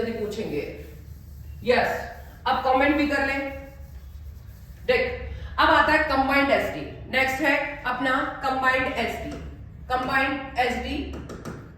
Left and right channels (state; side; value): identical; both; correlation 1.00